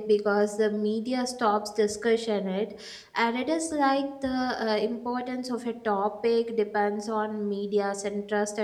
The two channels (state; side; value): identical; both; correlation 1.00